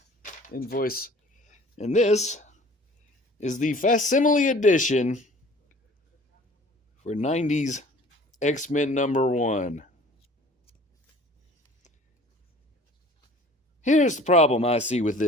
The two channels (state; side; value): normal; both; correlation 0.49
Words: invoice. And this is the facsimile edition for 90s X-Men number 1. Here's the problem I see with